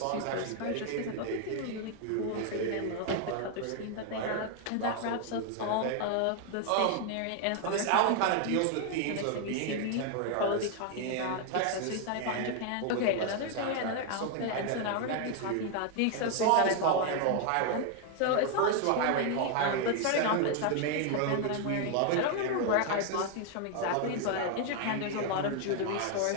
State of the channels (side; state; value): both; different; correlation 0.00